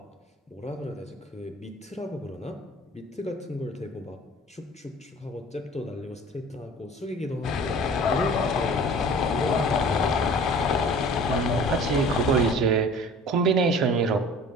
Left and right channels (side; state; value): both; normal; correlation 0.44